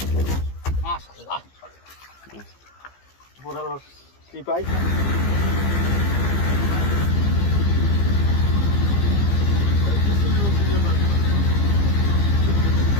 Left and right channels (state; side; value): late; right; 15 ms